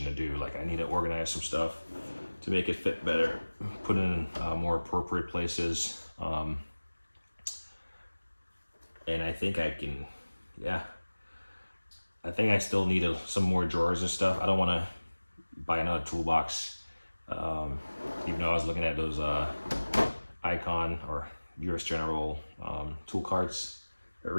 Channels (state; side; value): inverted; both; correlation -1.00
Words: to do. Like, I need to organize some stuff to make it fit better, put it in more appropriate places, and I think I can, yeah. I think I still need some more drawers and stuff. I don't want to buy another toolbox, even though I was looking at those Icon or US General tool carts. But